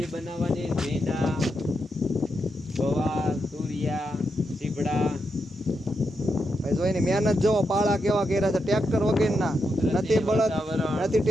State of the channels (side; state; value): both; normal; correlation 0.84